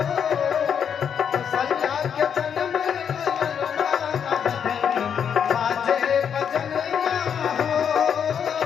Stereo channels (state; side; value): quieter; right; 7.8 dB